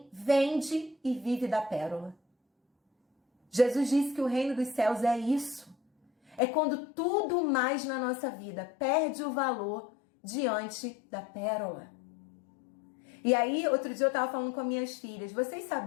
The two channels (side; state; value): right; drops out; at 6.4 s